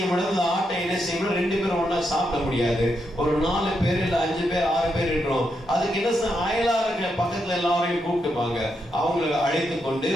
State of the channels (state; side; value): normal; both; correlation 0.82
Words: முடியாது, அந்த ஆட்டை என்ன செய்யணும், 2 பேரும் ஒண்ணா சாப்பிட முடியாது. ஒரு 4 பேர் இல்ல 5 பேர் 6 பேர் இருக்கிறோம். அதுக்கு என்ன அயலாளர்கள் பக்கத்துல எல்லாரையும் கூப்பிட்டுப்பாங்க. அவங்களை அழைத்து கொண்டு